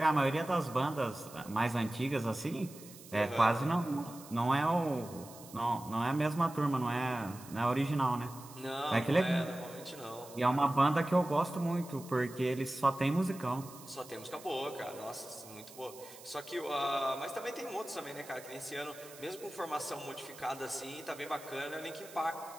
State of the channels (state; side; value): noise; right; hiss, 18 dB below the sound